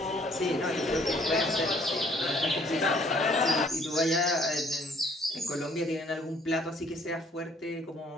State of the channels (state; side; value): normal; both; correlation 0.61